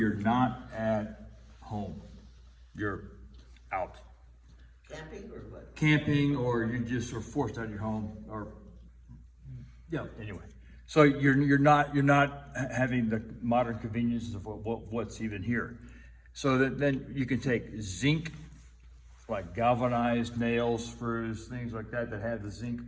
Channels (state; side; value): identical; both; correlation 1.00